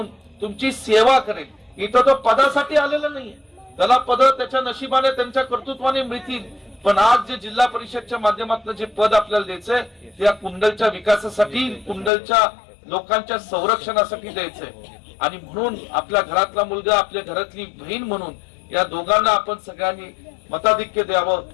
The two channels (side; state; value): right; drops out; at 12.1 s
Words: तुमची सेवा करेल. इथं तो पदासाठी आलेला नाहीये, त्याला पद त्याच्या नशिबाने त्यांच्या कर्तृत्वाने मिळतील, पण आज जे जिल्हा परिषदच्या माध्यमातून जे पद आपल्याला द्यायचंय ते या कुंडलच्या विकासासाठी, कुंडलच्या लोकांच्या संरक्षणासाठी द्यायचंय. आणि म्हणून आपल्या घरातला मुलगा, आपल्या घरातली बहीण म्हणून या दोघांना आपण सगळ्यांनी मताधिक्य द्यावं